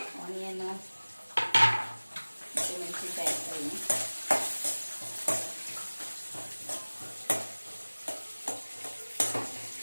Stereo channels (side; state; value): both; inverted; correlation -1.00